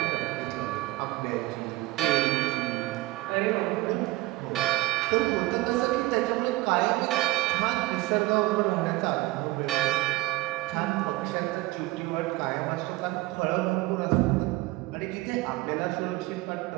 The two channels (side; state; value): left; quieter; 20.0 dB